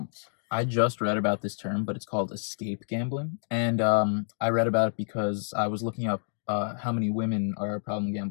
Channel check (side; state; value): right; silent; digital silence